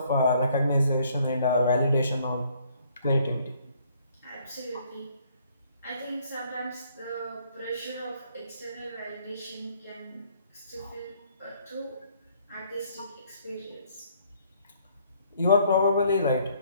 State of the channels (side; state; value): both; inverted; correlation -0.64